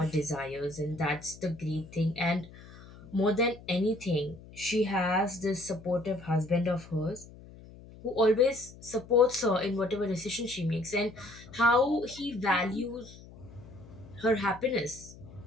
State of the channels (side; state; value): left; noise; hum, 19 dB below the sound